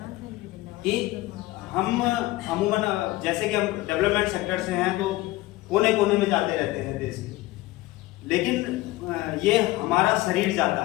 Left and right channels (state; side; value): quieter; right; 18.4 dB